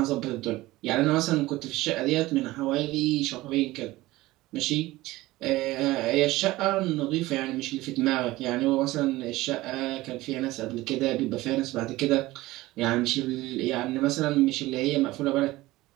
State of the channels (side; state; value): left; quieter; 18.4 dB